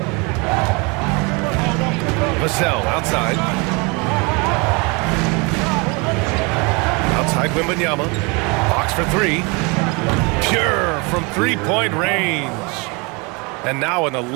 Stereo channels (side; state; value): left; quieter; 29.3 dB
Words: Vassell outside. Outside Wembanyama. Fox for 3. Pure from three-point range. And now an